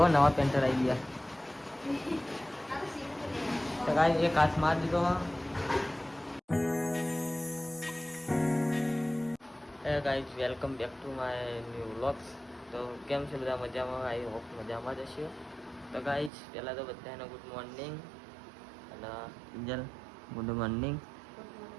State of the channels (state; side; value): drops out; left; at 16.3 s